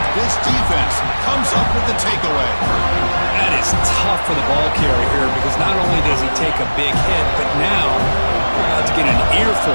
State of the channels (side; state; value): both; inverted; correlation -1.00